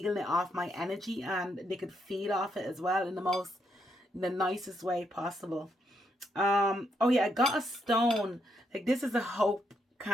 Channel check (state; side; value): normal; both; correlation 0.77